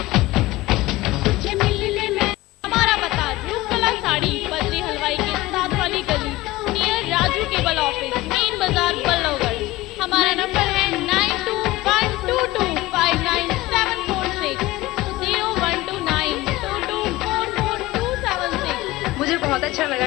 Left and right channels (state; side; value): quieter; right; 18.4 dB